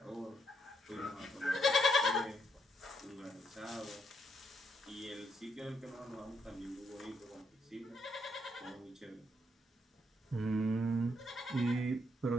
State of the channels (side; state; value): both; normal; correlation 0.75